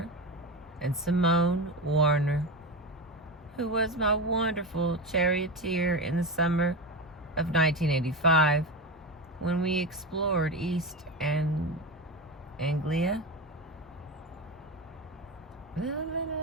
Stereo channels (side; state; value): both; normal; correlation 0.21